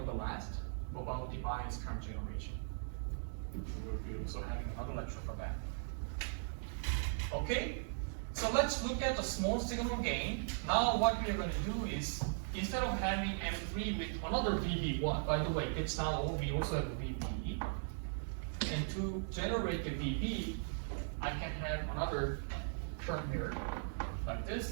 the last, about the bias current generation. We'll be also having another lecture for that. Okay, so let's look at the small signal gain. Now what we are going to do is, instead of having M3 with another VB1, by the way, it's not all, we also have a VB. And to generate the VB, I can have another term here, like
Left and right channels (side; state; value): left; silent; digital silence